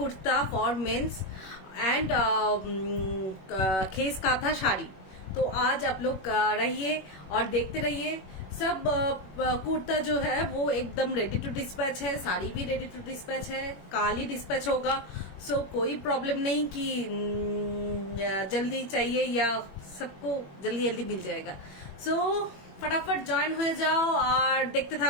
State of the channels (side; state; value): right; late; 21 ms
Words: for mens and khesh kantha sari. तो आज आप लोग रहिए और देखते रहिए। सब कुर्ता जो है वो एकदम रेडी टू डिस्पैच है, साड़ी भी रेडी टू डिस्पैच है, कल ही डिस्पैच होगा। सो कोई प्रॉब्लम नहीं कि जल्दी चाहिए, या सबको जल्दी जल्दी मिल जाएगा। सो फटाफट জয়েন হয়ে যাও আর দেখতে